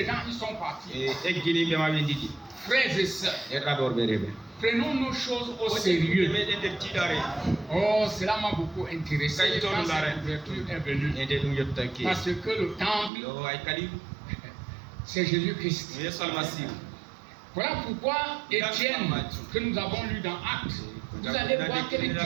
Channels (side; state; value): left; drops out; at 13.1 s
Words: gens, ils sont partis. Frères et sœurs, prenons nos choses au sérieux. Oh, cela m'a beaucoup intéressé quand cette ouverture est venue. Parce que le temple, c'est Jésus-Christ. Voilà pourquoi Étienne, que nous avons lu dans Actes, vous allez voir quel